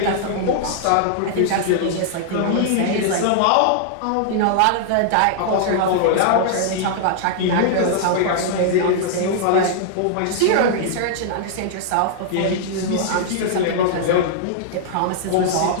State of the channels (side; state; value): both; different; correlation -0.01